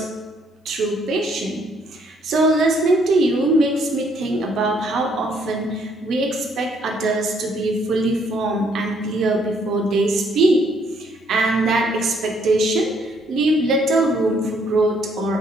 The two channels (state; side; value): normal; both; correlation 0.68